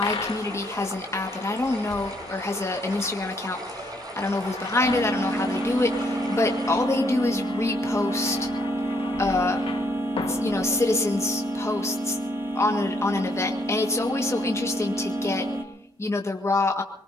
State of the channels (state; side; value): normal; both; correlation 0.70